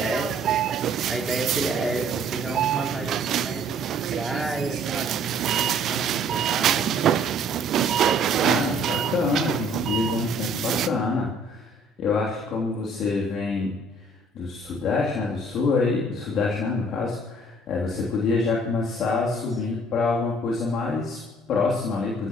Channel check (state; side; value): normal; both; correlation 0.58